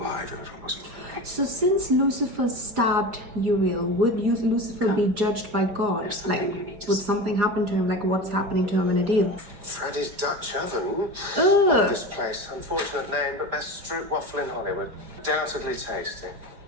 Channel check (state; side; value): late; left; 4.8 ms